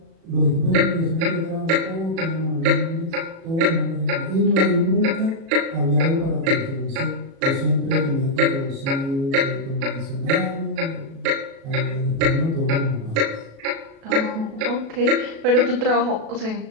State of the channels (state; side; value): late; left; 36 ms